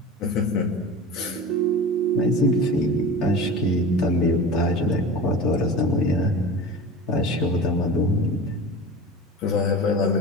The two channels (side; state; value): both; normal; correlation 0.32